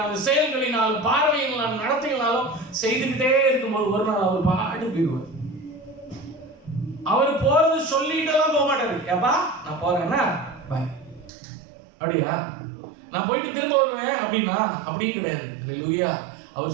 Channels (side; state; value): left; drops out; at 11.3 s